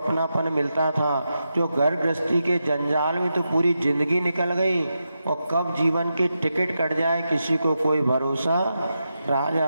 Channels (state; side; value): inverted; both; correlation -0.88